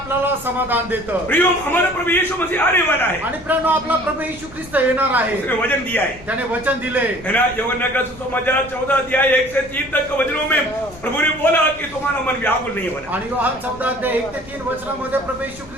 समाधान देतं। प्रियो, हमारा प्रभु यीशु मसीह आने वाला है, आणि प्रिय आपला प्रभू येशू ख्रिस्त येणार आहे, उसने वचन दिया है, त्याने वचन दिले है ना। यूहन्ना का सुसमाचार 14 अध्याय 1 से 3 तक के वचनों में प्रभु ने बोला कि तुम्हारा मन व्याकुल नहीं होना। आणि योहान 14 अध्याय 1 ते 3 वचनामध्ये प्रभू येशू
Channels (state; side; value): noise; left; rumble, 21 dB below the sound